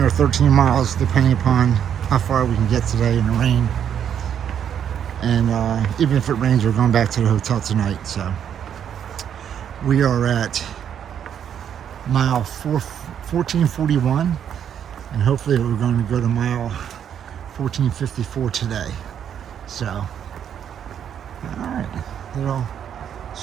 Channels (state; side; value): quieter; left; 8.9 dB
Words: or 13 miles depending upon how far we can get today in the rain. And even if it rains, we're going back to the hotel tonight. So we are at mile 1441, and hopefully we're going to go to mile 1454 today. So all right, little